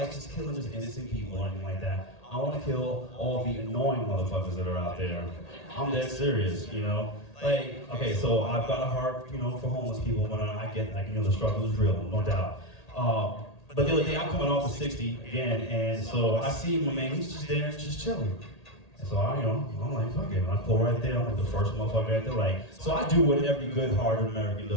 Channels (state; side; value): late; right; 1.8 ms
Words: just killing just innocent people or anything like that. I want to kill all the annoying motherfuckers that are out there. I'm dead serious, you know? Like, okay, so I've got a heart, you know, for homeless people, but I get, like, you know, the struggle is real, no doubt. But the other day, I'm coming off of 60 again, and so I see my man, he's just there, just chilling. And so I'm like, fuck it, I pull right there, I'm like the first motherfucker right there, like, so I do what every good-hearted American